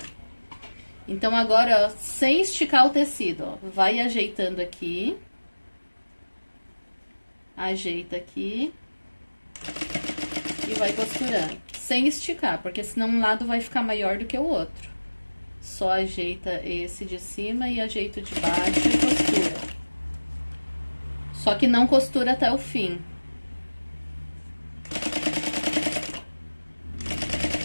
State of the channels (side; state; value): both; inverted; correlation -1.00